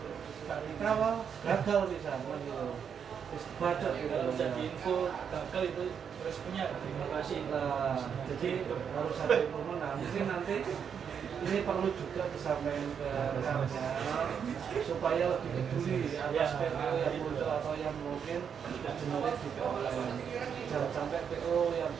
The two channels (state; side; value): quieter; left; 7.4 dB